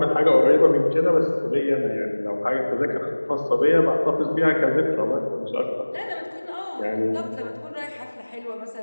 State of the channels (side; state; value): both; inverted; correlation -1.00